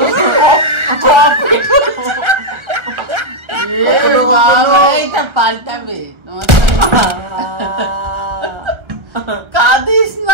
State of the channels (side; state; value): left; late; 1.4 ms